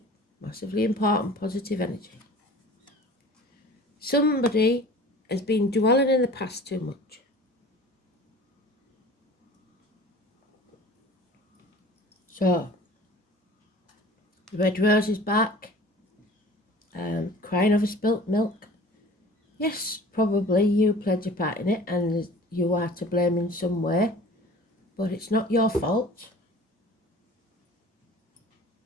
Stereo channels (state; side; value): normal; both; correlation 0.44